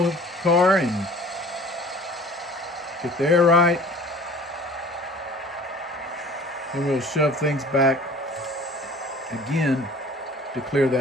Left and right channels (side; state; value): both; normal; correlation 0.47